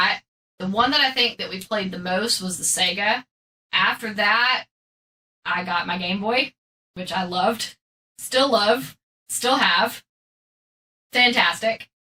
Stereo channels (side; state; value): both; identical; correlation 1.00